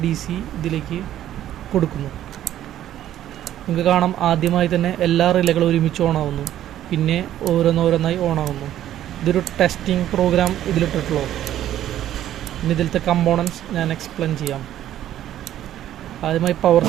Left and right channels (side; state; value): left; quieter; 12.1 dB